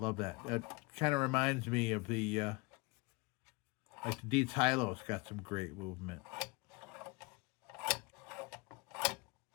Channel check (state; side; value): quieter; right; 26.0 dB